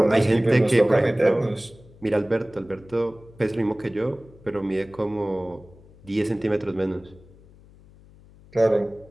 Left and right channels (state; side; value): noise; left; hum, 25 dB below the sound